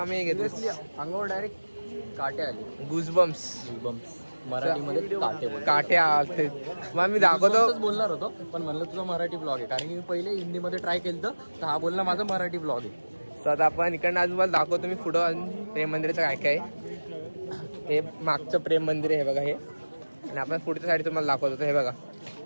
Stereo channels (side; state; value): both; inverted; correlation -1.00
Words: घेतलं अंगावर डायरेक्ट काटे आले. गुजबम्स. मराठीमध्ये काटे आलते. मग मी दाखवतो बोलणार होतो पण म्हणलं तुझा मराठी ब्लॉग आहे कारण की मी पहिले हिंदीमध्ये ट्राय केलं तर हा बोलला माझा मराठी ब्लॉग आहे. तर आता आपण इकडनं अजून मला दाखवतो मी पुढं अजून प्रेम मंदिराचं काय काय. हे मागचं प्रेम मंदिर आहे हे बघा हे. आणि आपण पुढच्या साईड तुम्हाला दाखवतो. हे बघा